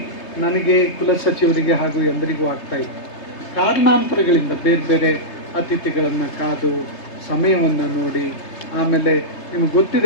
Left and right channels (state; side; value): late; right; 3.3 ms